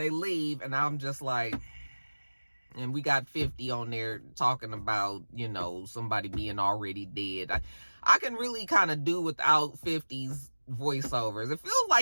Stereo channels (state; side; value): inverted; both; correlation -1.00